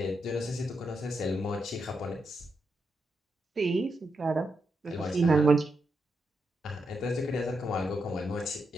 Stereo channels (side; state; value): both; normal; correlation 0.84